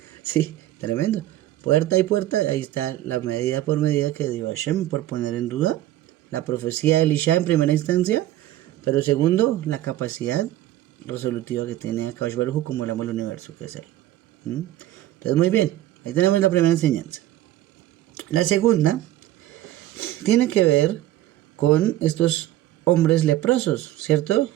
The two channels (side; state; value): left; quieter; 14.3 dB